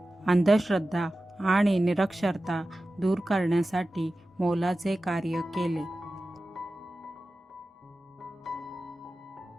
अंधश्रद्धा आणि निरक्षरता दूर करण्यासाठी मोलाचे कार्य केले।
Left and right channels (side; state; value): both; normal; correlation 0.95